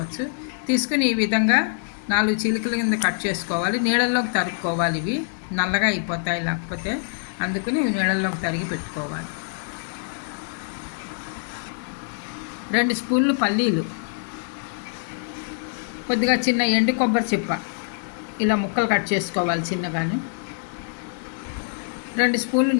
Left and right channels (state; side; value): silent; right; digital silence